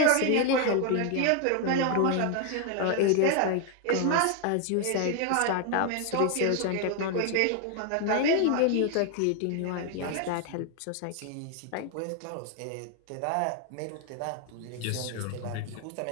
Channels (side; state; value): both; different; correlation 0.01